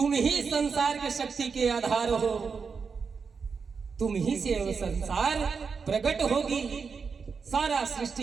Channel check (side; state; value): left; quieter; 5.5 dB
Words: ही संसार के शक्ति के आधार हो, तुम ही से वो संसार प्रकट होगी। सारा